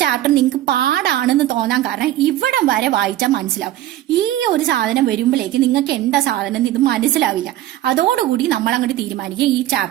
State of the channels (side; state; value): left; quieter; 13.7 dB